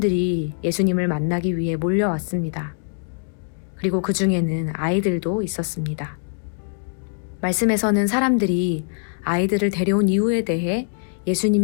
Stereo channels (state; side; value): silent; right; digital silence